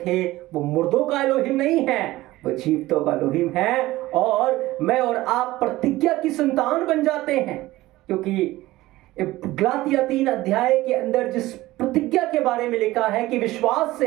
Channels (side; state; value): left; quieter; 17.6 dB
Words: वो मुर्दों का एलोहिम नहीं है, वो जीवितों का एलोहिम है। और मैं और आप प्रतिज्ञा की संतान बन जाते हैं, क्योंकि गलातिया 3 अध्याय के अंदर जिस प्रतिज्ञा के बारे में लिखा है कि विश्वास